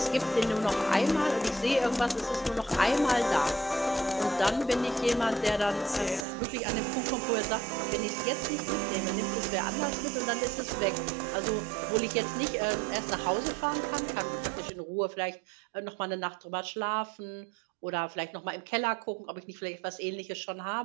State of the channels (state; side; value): drops out; left; at 6.2 s